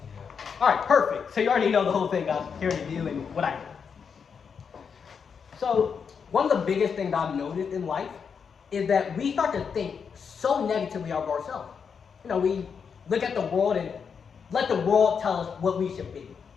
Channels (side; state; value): right; quieter; 6.4 dB